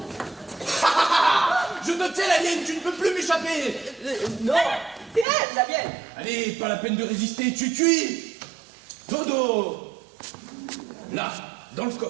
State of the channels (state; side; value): drops out; left; at 5.2 s